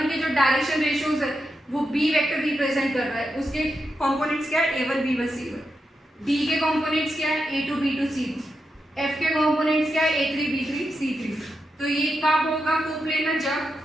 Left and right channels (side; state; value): both; normal; correlation 0.86